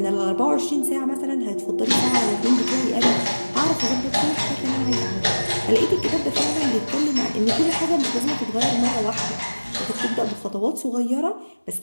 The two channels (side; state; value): both; inverted; correlation -1.00